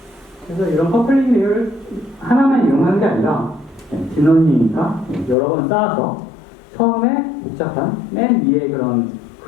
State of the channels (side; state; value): right; drops out; at 5.4 s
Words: 그래서 이런 커플링 레이어를 하나만 이용하는 게 아니라 딥러닝이니까 여러 번 쌓아서 처음에 복잡한 맨 위에 그런